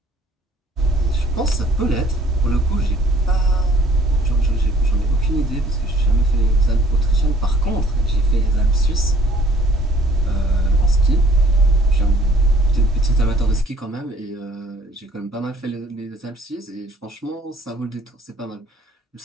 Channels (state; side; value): normal; both; correlation 0.57